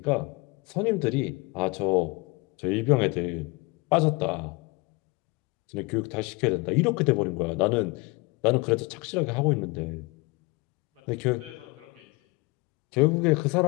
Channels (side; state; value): right; quieter; 26.3 dB